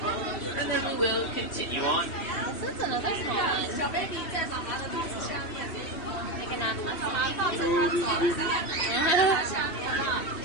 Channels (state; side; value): late; right; 2.9 ms